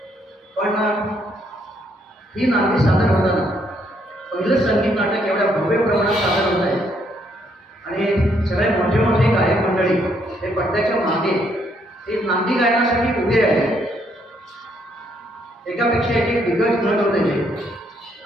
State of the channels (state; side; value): normal; both; correlation 0.71